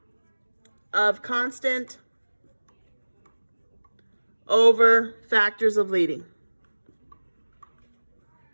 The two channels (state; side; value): inverted; both; correlation -1.00